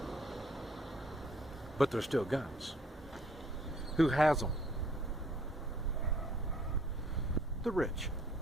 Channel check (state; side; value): normal; both; correlation 0.60